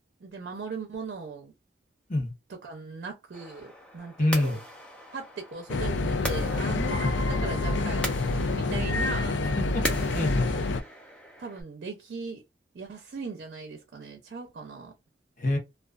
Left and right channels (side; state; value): both; normal; correlation 0.60